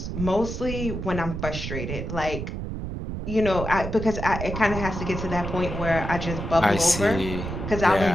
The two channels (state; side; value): noise; right; rumble, 5 dB below the sound